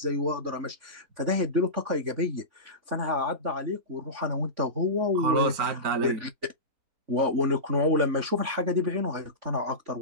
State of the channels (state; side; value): late; left; 3.5 ms